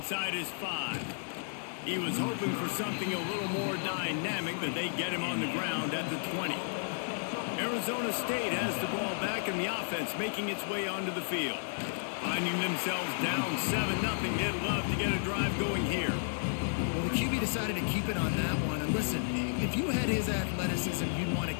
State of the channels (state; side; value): silent; right; 56 dB below the other